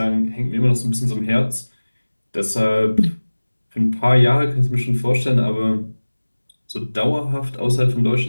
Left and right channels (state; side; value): inverted; both; correlation -1.00